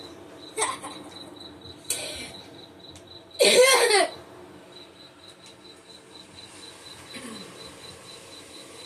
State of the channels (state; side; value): identical; both; correlation 1.00